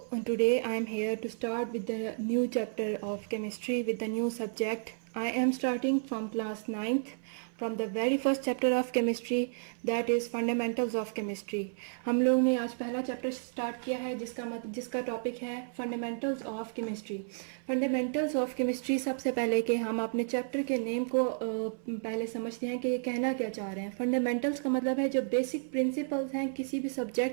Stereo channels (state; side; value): silent; left; 56 dB below the other